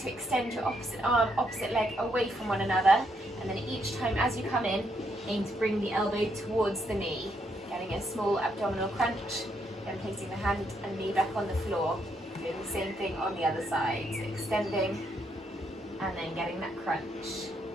to extend your opposite arm, opposite leg away from one another. And then each time as you come in, aim to bring the elbow towards the knee. Getting a small abdominal crunch. And placing the hand and knee back on the floor. Doing the same thing on the other side. So extending and then getting that crunch.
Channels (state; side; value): normal; both; correlation 0.76